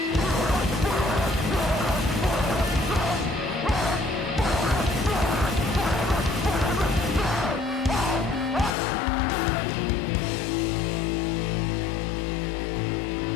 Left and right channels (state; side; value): drops out; right; at 8.8 s